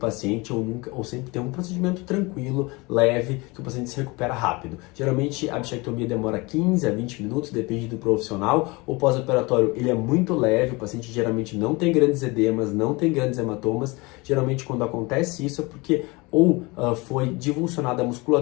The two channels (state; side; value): quieter; right; 25.1 dB